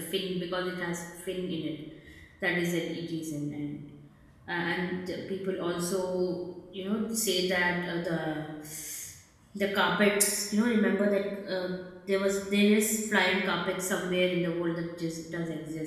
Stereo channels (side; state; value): both; identical; correlation 1.00